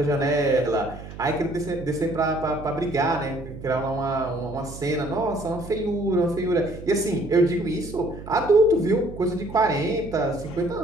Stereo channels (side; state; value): right; noise; hum, 13 dB below the sound